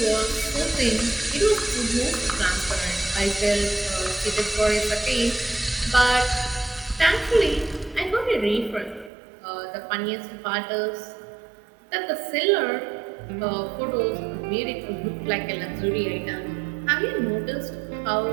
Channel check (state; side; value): drops out; left; at 9.1 s